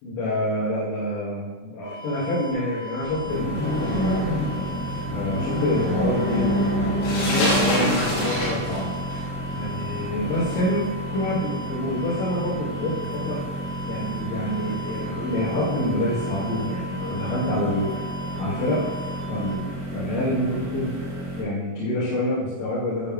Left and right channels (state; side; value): late; right; 27 ms